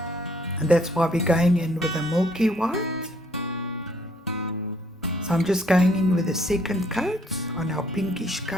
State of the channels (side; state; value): both; normal; correlation 0.65